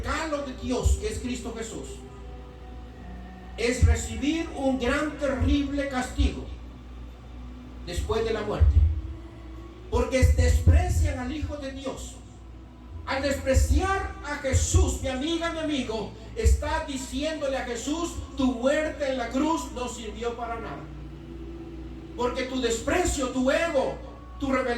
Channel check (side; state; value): both; identical; correlation 1.00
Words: de Dios que es Cristo Jesús, es recibir un gran, terrible castigo después de la muerte. Porque desprecian al Hijo de Dios. Al despreciar a Jesús, mi amiga, mi amigo, está diciéndole a Jesús: tu muerte en la cruz no sirvió para nada. Porque tu desprecio, tu ego, tu